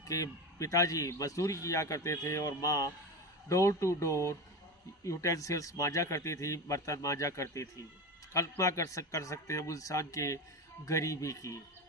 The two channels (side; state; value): both; normal; correlation 0.23